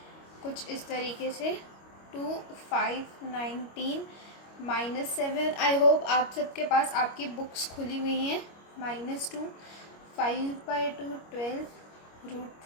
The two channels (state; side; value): late; right; 25 ms